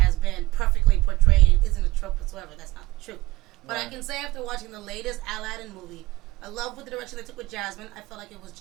been perfectly portrayed and isn't a trope whatsoever. That's not the truth. But I Right. can say after watching the latest Aladdin movie, I love what the direction they took with Jasmine. I felt like it was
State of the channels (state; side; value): quieter; left; 19.3 dB